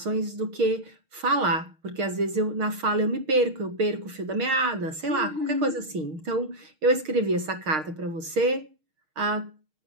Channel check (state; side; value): late; left; 6.4 ms